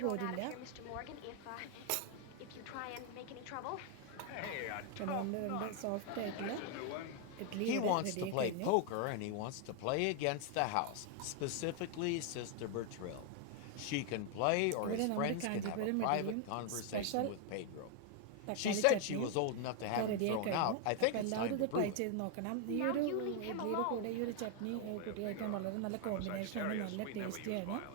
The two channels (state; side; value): different; both; correlation 0.00